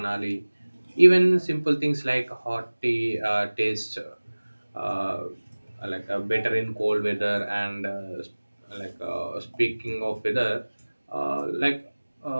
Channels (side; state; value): both; inverted; correlation -1.00